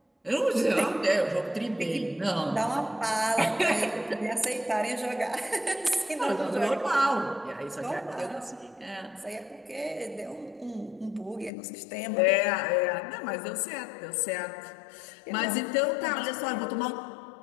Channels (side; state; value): right; drops out; at 11.5 s